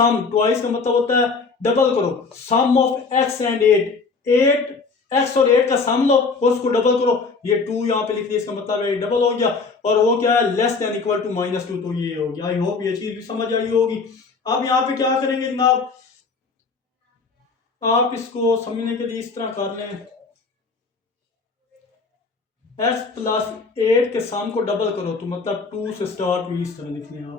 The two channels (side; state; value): right; quieter; 4.5 dB